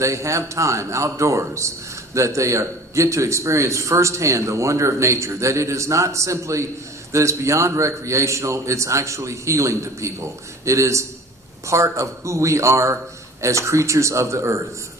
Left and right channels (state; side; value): normal; both; correlation 0.45